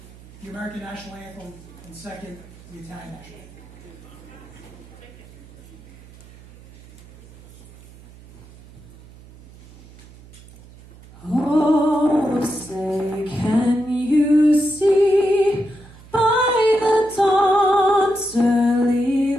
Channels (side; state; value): right; noise; hum, 21 dB below the sound